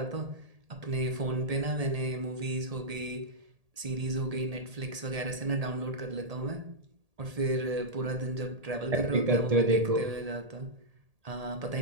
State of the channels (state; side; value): late; left; 1.8 ms